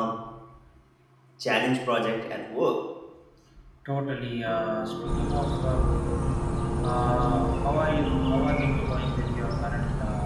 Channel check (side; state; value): both; identical; correlation 1.00